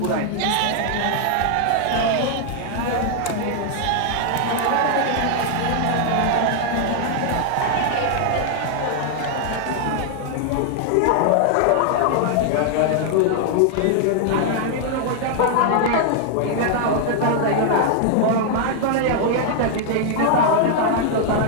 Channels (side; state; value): both; different; correlation 0.00